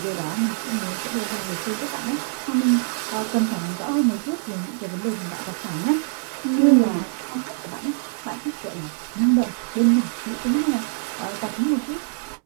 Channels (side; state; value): left; silent; 63 dB below the other